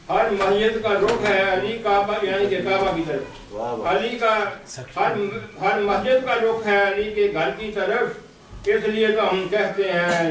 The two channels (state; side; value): identical; both; correlation 1.00